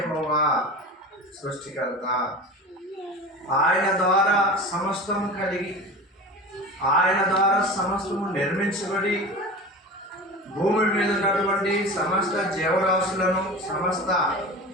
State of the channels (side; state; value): both; normal; correlation 0.32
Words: సృష్టికర్త. ఆయన ద్వారా సమస్తము కలిగి, ఆయన ద్వారా సమస్తము నిర్మించబడి, భూమి మీద ఉన్నటువంటి సమస్త జీవరాశులను, సమస్త